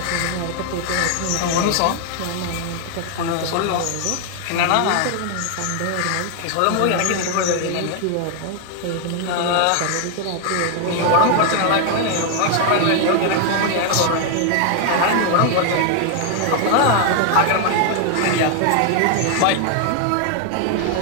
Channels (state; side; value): different; both; correlation 0.00